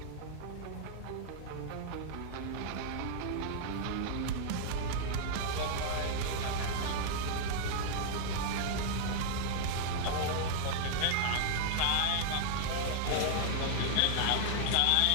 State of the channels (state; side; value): different; both; correlation -0.01